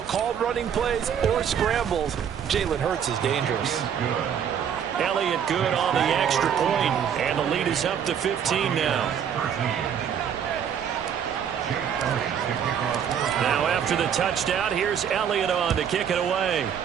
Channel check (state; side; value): quieter; left; 8.3 dB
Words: running plays or scrambles, Jalen Hurts is dangerous. Elliott good on the extra point, and the lead is up to 15 now. Now after the touchdown, here's Elliott on to kick it away.